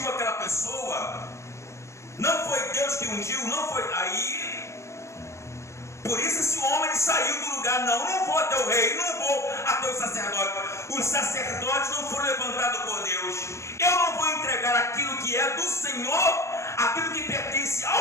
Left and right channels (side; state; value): right; late; 0.14 ms